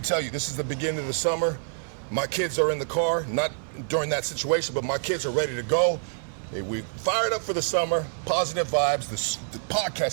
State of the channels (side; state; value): left; silent; 58 dB below the other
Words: you, this is the beginning of the summer. My kids are in the car, not during that situation, but my kids are ready to go. We fired up for the summer, positive vibes. The